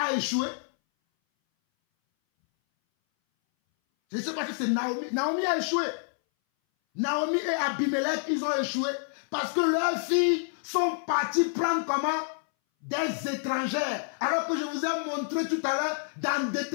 échoué? Je ne sais pas si c'est Naomi. Naomi a échoué. Naomi et Abimelech, ils ont échoué parce que leurs filles sont parties prendre comment? Des étrangères. Alors que je vous ai montré tout à l'heure dans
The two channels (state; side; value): silent; right; 59 dB below the other